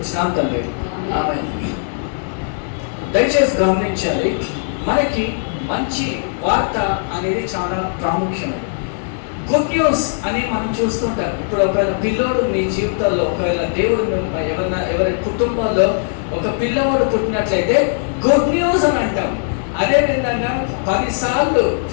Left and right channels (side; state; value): right; silent; digital silence